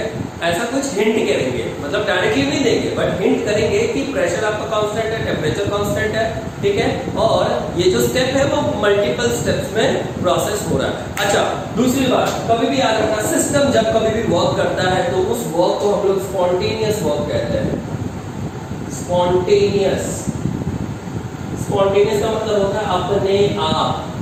ऐसा कुछ हिंट करेंगे, मतलब डायरेक्टली नहीं देंगे बट हिंट करेंगे कि प्रेशर आपका कांस्टेंट है, टेम्परेचर कांस्टेंट है। ठीक है, और ये जो स्टेप है वो मल्टीपल स्टेप्स में प्रोसेस हो रहा है। अच्छा, दूसरी बात कभी भी याद रखना, सिस्टम जब कभी भी वर्क करता है तो उस वर्क को हम लोग स्पॉन्टेनियस वर्क कहते हैं। स्पॉन्टेनियस का मतलब होता है अपने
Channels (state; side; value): identical; both; correlation 1.00